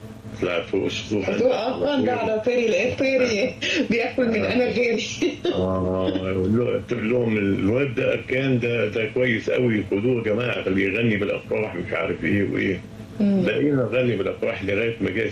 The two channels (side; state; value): both; identical; correlation 1.00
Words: طلعت فوق السطوح. ده على طيري لقيت طيري بياكل من انا غيري. قلت لهم الواد ده اركان ده كويس قوي خدوه يا جماعه خليه يغني بالافراح مش عارف ايه وايه. بقينا نغني بالافراح لغايه ما جاء